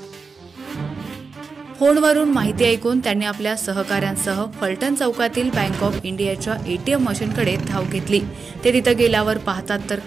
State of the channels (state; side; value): quieter; left; 4.8 dB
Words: फोनवरून माहिती ऐकून त्यांनी आपल्या सहकाऱ्यांसह फलटण चौकातील बँक ऑफ इंडियाच्या एटीएम मशीनकडे धाव घेतली। ते तिथे गेल्यावर पाहतात तर